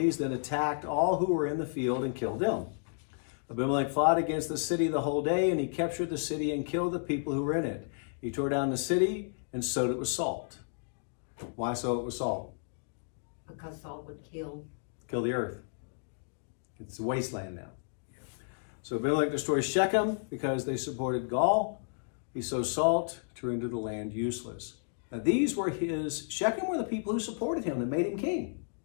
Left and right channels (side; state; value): right; silent; digital silence